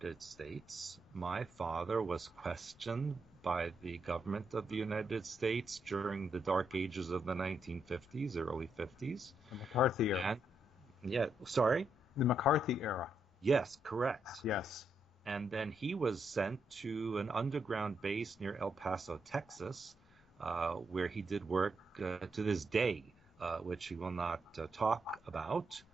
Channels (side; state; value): both; normal; correlation 0.79